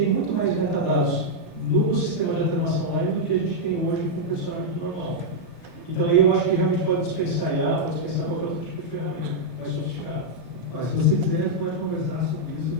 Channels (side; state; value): both; normal; correlation -0.04